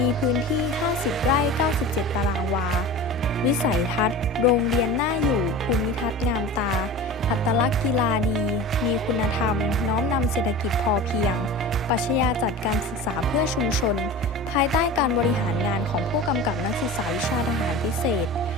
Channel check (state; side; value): normal; both; correlation 0.34